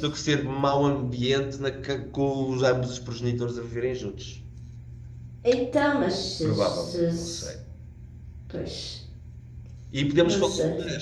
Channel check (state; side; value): identical; both; correlation 1.00